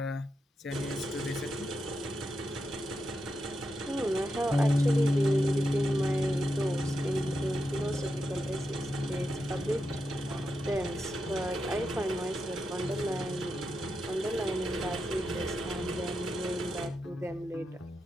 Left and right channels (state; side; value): normal; both; correlation 0.86